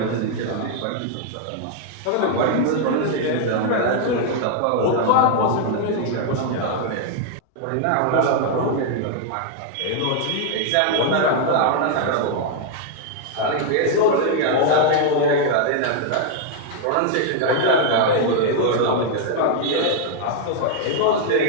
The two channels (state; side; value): different; both; correlation 0.00